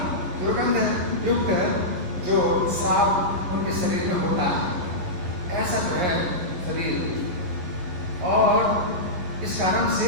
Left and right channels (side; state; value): left; late; 11 ms